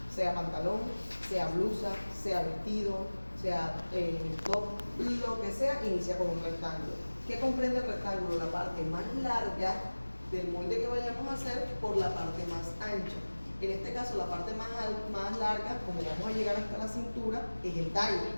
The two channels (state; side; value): inverted; both; correlation -1.00